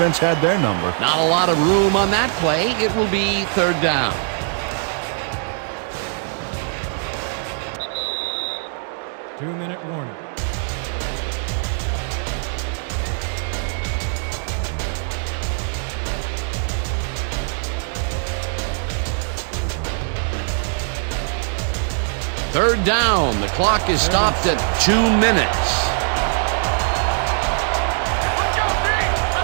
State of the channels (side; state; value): left; silent; 65 dB below the other